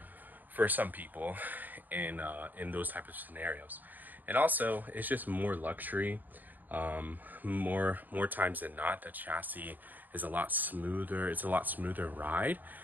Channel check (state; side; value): late; left; 0.085 ms